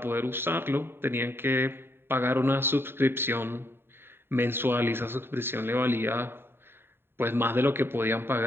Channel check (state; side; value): late; left; 0.11 ms